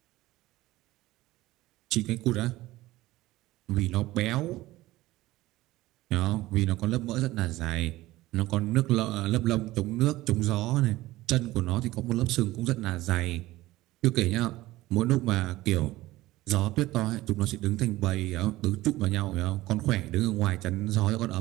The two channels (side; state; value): left; quieter; 17.6 dB